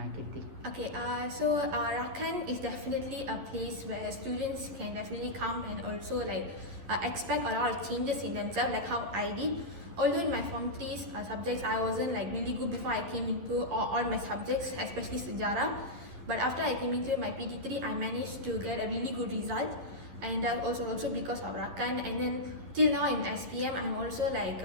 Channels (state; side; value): late; left; 11 ms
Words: Kirti? Okay, so Rakan is definitely a place where students can definitely come and also like expect a lot of changes in themselves, like how I did. Although in my Form 3 subjects, I wasn't like really good before I came into all my subjects, especially Sejarah. But after I came into my PT3, I managed to get a really good result. And also because of Rakan. And then till now in SPM, I'm also like,